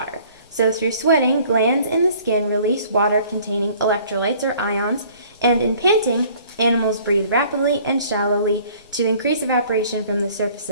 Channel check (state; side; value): inverted; both; correlation -0.54